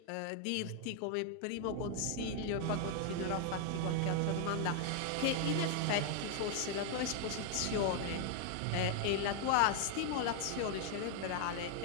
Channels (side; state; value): both; different; correlation 0.00